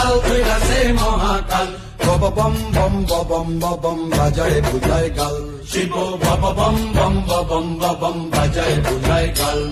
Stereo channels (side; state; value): both; identical; correlation 1.00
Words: ধইরাছে মহাকাল। বব বম বম বম বম বাজায় বুঝায় গাল, শিব বব বম বম বম বম বাজায় বুঝায় গাল।